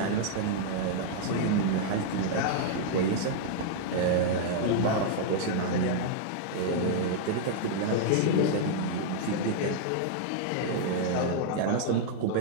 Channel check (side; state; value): both; different; correlation -0.01